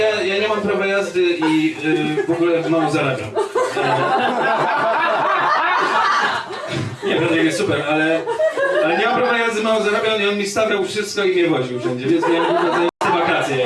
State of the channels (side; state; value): both; identical; correlation 1.00